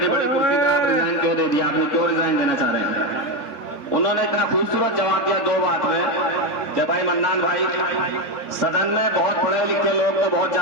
बड़ी कुर्सी पे आप रिजाइन क्यों दे दिया, आपने क्यों रिजाइन देना चाह रहे हैं? उन्होंने इतना खूबसूरत जवाब दिया 2 बात में कि भाई मन्नान भाई, सदन में बहुत पढ़े लिखे लोग तो बहुत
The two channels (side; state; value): right; late; 3.5 ms